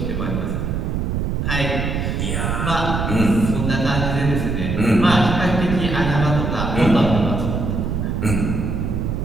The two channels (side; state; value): right; noise; rumble, 1 dB below the sound